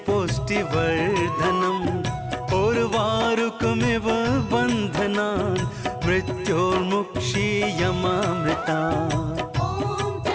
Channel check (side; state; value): both; identical; correlation 1.00